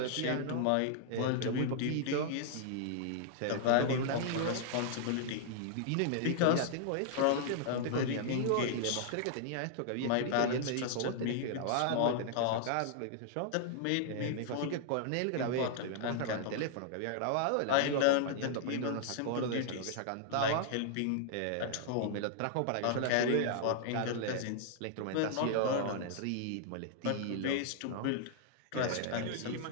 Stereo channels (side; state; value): both; different; correlation -0.01